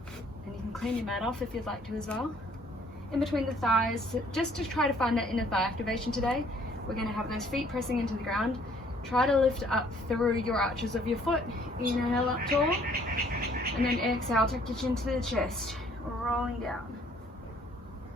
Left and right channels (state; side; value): normal; both; correlation 0.61